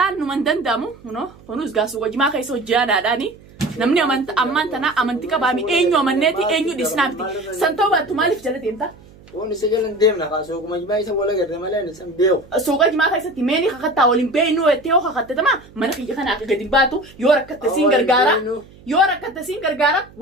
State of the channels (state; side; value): noise; right; hum, 24 dB below the sound